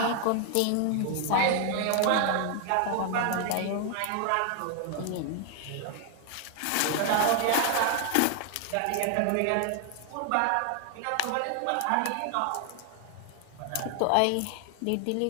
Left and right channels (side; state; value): both; different; correlation 0.00